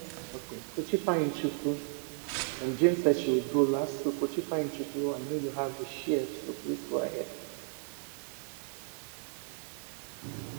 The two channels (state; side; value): silent; left; 55 dB below the other